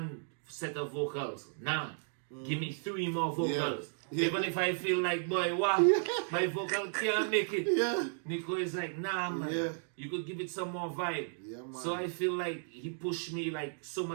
set of vocals, give me 3 more vocals. Even if I feel like, boy, what? My vocal can't make it. Nicko is like, nah, man. You could give it some more vibe. So I feel like he pushed me so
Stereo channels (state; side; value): silent; left; digital silence